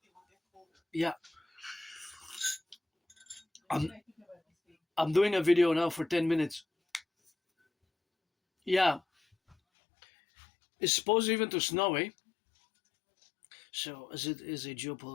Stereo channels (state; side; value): drops out; right; at 9.6 s